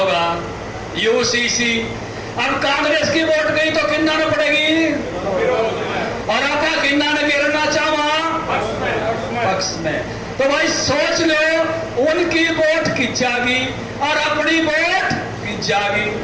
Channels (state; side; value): identical; both; correlation 1.00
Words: यूसीसी, अब कांग्रेस की वोट गई तो कितना न पड़ेगी और आपका कितना न गिरना चाहा पक्ष में। तो भाई सोच लो, उनकी वोट की जागी और अपनी वोट की जागी।